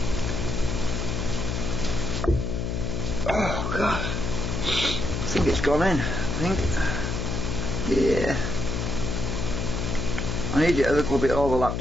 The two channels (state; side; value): noise; left; hum, 2 dB below the sound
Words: Oh God, I think it's gone in, yeah. I need it a little bit